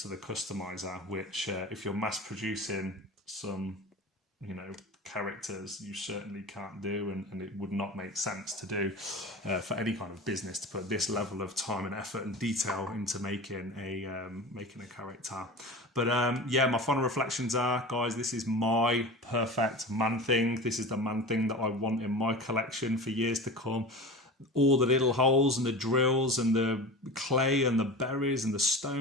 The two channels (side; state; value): both; normal; correlation 0.32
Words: to the customizer, which if you're mass producing some, you know, characters, you certainly can't do, and it would not make sense to do for any kind of business to put this level of time and effort and detail into making a character. But yeah, my final reflections are, guys, this is my perfect man thing. This is the man thing that I want in my collection for years to come. All the little holes and the drills and the clay and the berries and the